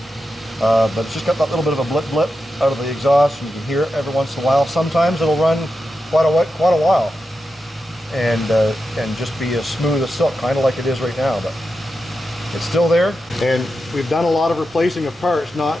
but it's just got that little bit of a blip out of the exhaust, and you can hear it every once in a while. Sometimes it'll run quite a while, and just be as smooth as silk, kind of like it is right now. But it's still there, and we've done a lot of replacing of parts, not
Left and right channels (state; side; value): normal; both; correlation 0.89